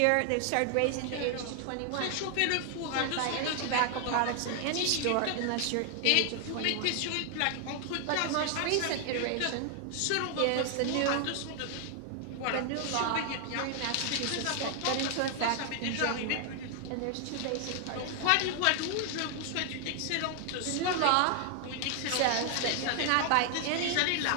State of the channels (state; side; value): different; both; correlation 0.00